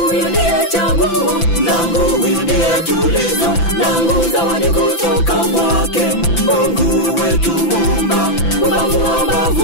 ndiye chaguo langu, huyu ndiye tulizo langu, zawadi kutoka kwake Mungu wetu Muumba. Ubavu wa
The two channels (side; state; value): right; late; 5.9 ms